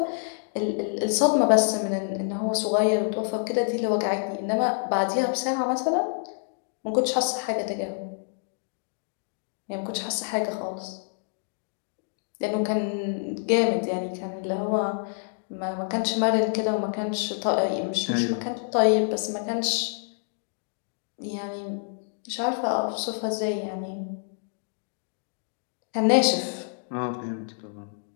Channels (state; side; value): silent; right; digital silence